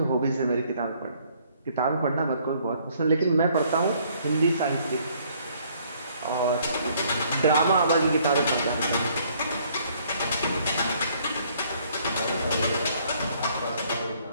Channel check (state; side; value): inverted; both; correlation -0.63